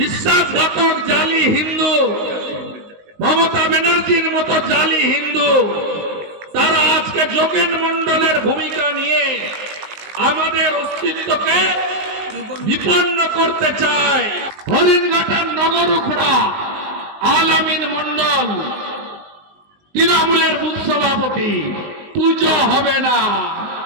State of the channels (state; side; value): late; left; 19 ms